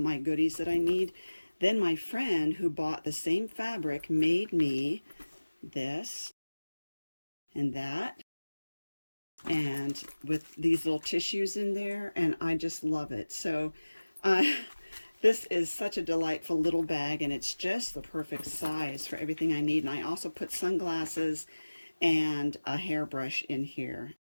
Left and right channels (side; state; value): both; inverted; correlation -1.00